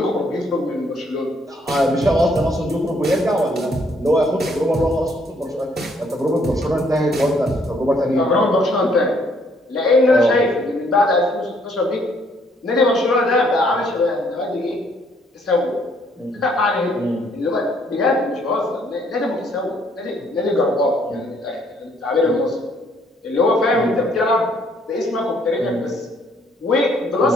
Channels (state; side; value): normal; both; correlation 0.66